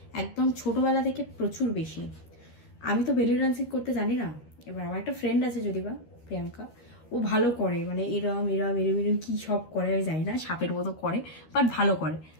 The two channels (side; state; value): right; late; 13 ms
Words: একদম ছোটবেলা থেকে প্রচুর বেশি। আমি তো বেলি ডান্সিং করতে জানি না। এবার আমার একটা ফ্রেন্ড আছে যদি বা প্রিয়াঙ্কা, ও ভালো করে, মানে এরম এরম এরম এরম কি সব করে আমি জানি না, সাপের মতো করে, বাট ভালো করে।